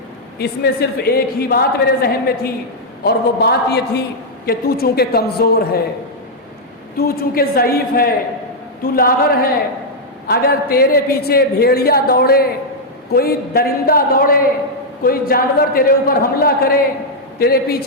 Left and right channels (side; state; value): both; normal; correlation -0.04